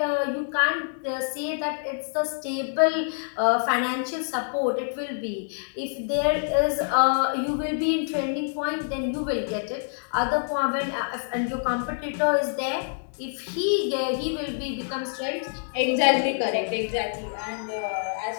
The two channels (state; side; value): silent; right; digital silence